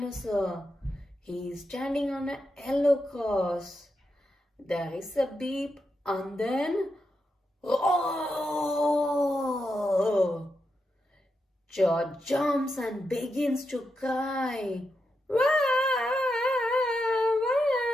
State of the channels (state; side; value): normal; both; correlation 0.86